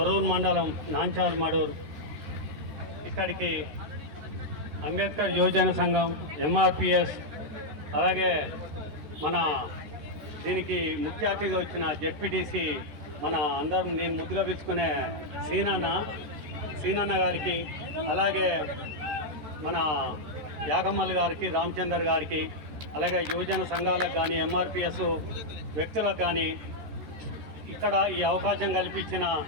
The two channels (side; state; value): left; late; 13 ms